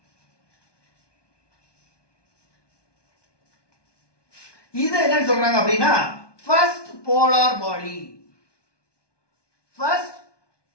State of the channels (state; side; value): late; right; 1.2 ms